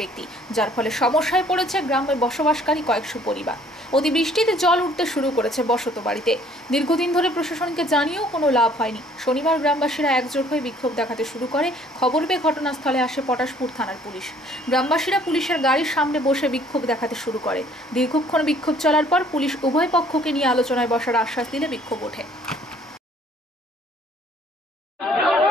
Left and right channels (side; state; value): both; normal; correlation 0.58